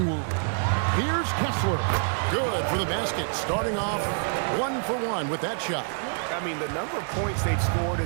Here's Kessler. Good for the basket. Starting off 1 for 1 with that shot. I mean, the number of points they've scored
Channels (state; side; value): silent; left; 57 dB below the other